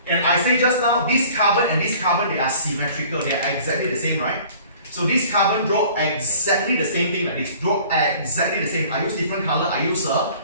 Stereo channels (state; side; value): inverted; both; correlation -0.49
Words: And I say just now, this carbon and this carbon, they are symmetrical. They are exactly the same, right? So this carbon draw exactly the same thing like this. Draw exactly the same. I use different color. I use a